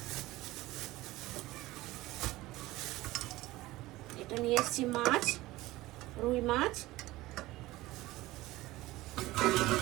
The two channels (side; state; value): left; quieter; 18.1 dB